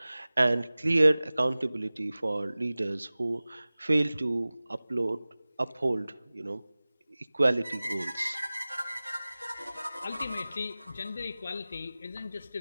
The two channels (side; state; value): both; inverted; correlation -0.98